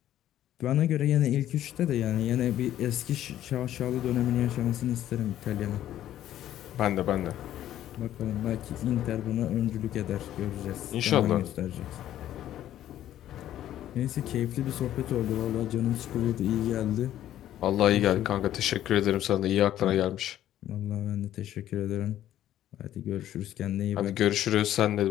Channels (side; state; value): right; quieter; 12.3 dB